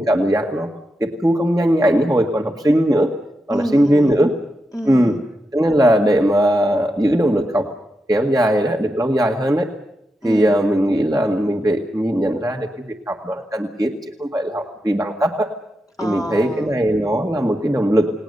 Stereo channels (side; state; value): both; normal; correlation 0.87